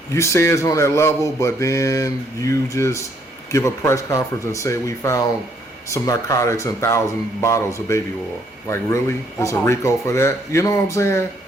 you say it's on that level, but then you just give a press conference and say we found some narcotics and 1,000 bottles of baby oil. Like, really? There's a RICO for that? You know what I'm saying?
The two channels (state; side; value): normal; both; correlation 0.69